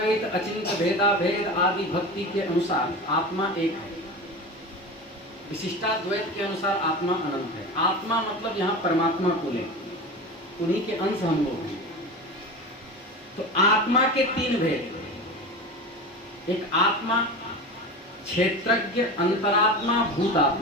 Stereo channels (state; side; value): normal; both; correlation 0.29